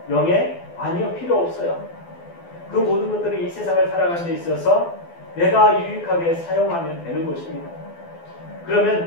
명예, 아니요, 필요 없어요. 그 모든 것들이 이 세상을 살아가는 데 있어서 내가 유익하게 사용하면 되는 것입니다.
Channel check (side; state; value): right; late; 12 ms